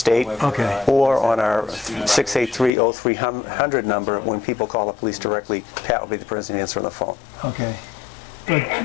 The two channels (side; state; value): right; drops out; at 2.7 s